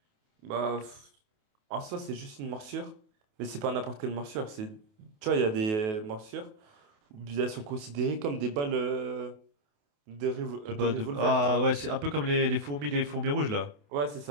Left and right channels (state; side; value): late; left; 28 ms